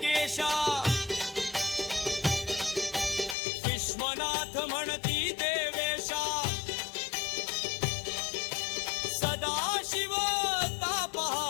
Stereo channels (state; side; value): drops out; right; at 3.4 s